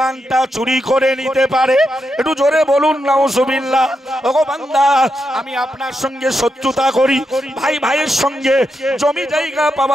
চুরি করে নিতে পারে। একটু জোরে বলুন নাউজুবিল্লাহ। ওগো বান্দা, আমি আপনার সঙ্গে শত্রুতা করি, ভাই ভাইয়ের সঙ্গে জমি জায়গা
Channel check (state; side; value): normal; both; correlation 0.85